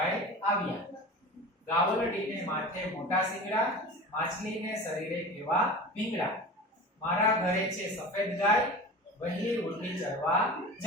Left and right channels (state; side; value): normal; both; correlation 0.34